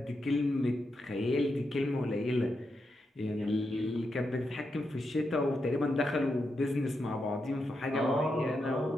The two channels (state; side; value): normal; both; correlation 0.85